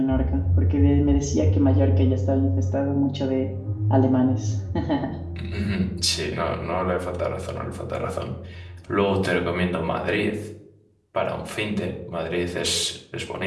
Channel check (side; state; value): both; identical; correlation 1.00